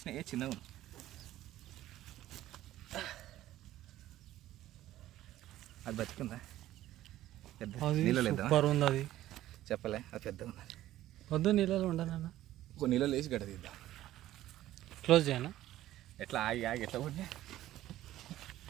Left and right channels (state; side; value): quieter; left; 14.2 dB